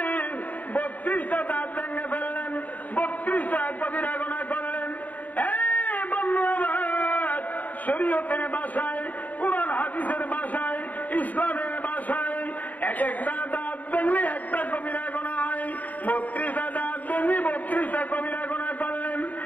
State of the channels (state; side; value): late; right; 0.077 ms